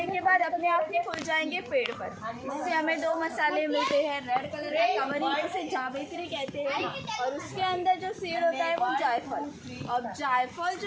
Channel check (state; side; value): identical; both; correlation 1.00